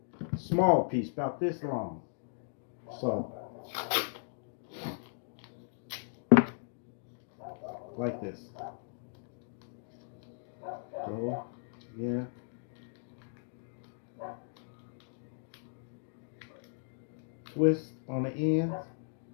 Small piece, about this long. So, like this. Go, yeah. Twist on the ends.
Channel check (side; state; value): right; silent; digital silence